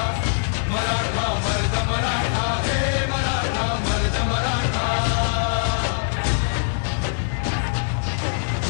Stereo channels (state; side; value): silent; right; digital silence